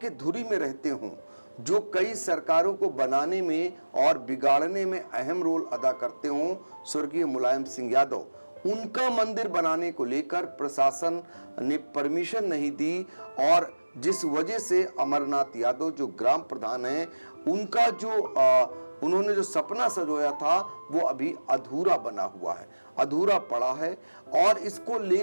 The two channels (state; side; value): inverted; both; correlation -1.00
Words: धुरी में रहते हों, जो कई सरकारों को बनाने में और बिगाड़ने में अहम रोल अदा करते हों, स्वर्गीय मुलायम सिंह यादव, उनका मंदिर बनाने को लेकर प्रशासन ने परमिशन नहीं दी। और जिस वजह से अमरनाथ यादव जो ग्राम प्रधान हैं, उनका जो उन्होंने जो सपना सजोया था वो अभी अधूरा बना हुआ है, अधूरा पड़ा है। और इसको